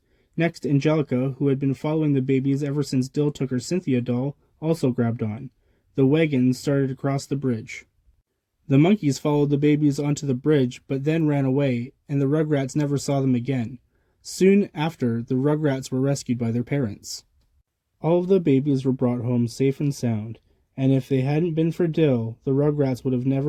Next, Angelica, who had been following the babies ever since Dill took her Cynthia doll, also grabbed on. The wagon started across the bridge. The monkeys followed the babies onto the bridge, but then ran away, and the Rugrats never saw them again. Soon after, the Rugrats were rescued by their parents. All of the babies were brought home safe and sound, and if they hadn't been for Dill, the Rugrats would have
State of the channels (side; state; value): both; identical; correlation 1.00